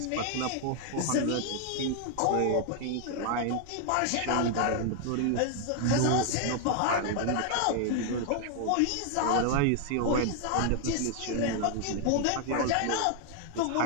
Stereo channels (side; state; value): both; different; correlation 0.00